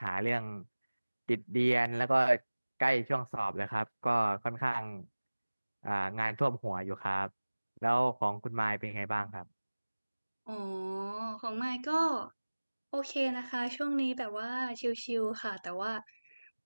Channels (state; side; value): inverted; both; correlation -1.00